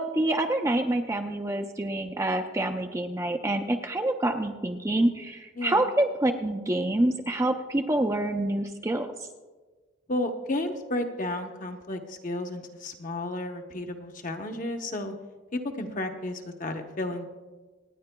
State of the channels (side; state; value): both; normal; correlation 0.68